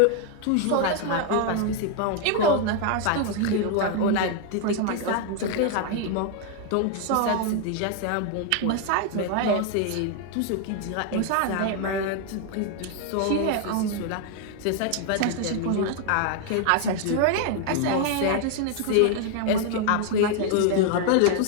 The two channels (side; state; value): both; different; correlation 0.00